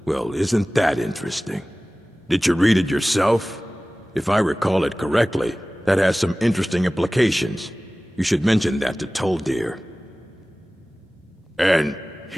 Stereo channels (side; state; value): both; normal; correlation 0.98